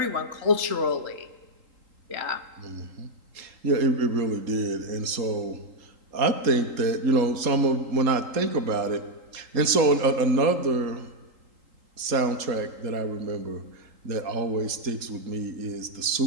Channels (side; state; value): left; late; 3.8 ms